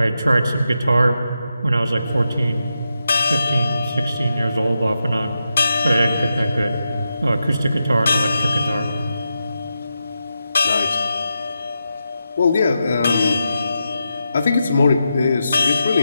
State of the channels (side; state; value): both; inverted; correlation -0.87